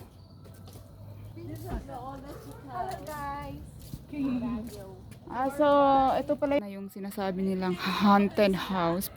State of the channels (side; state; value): both; identical; correlation 1.00